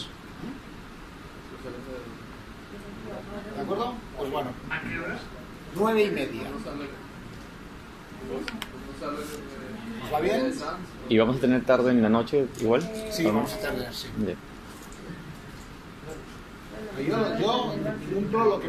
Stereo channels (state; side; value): identical; both; correlation 1.00